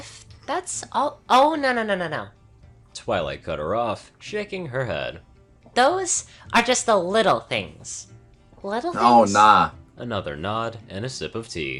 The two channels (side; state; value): both; identical; correlation 1.00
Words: that's all. Oh, no. Twilight cut her off, shaking her head. Those are just the little things. Little things? oh nah. Another nod and a sip of